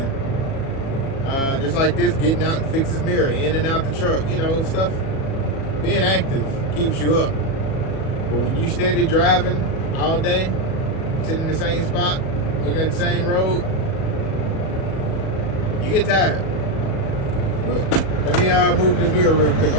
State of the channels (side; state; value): right; late; 37 ms